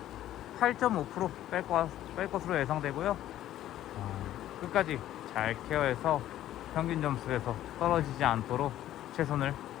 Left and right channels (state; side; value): quieter; right; 12.9 dB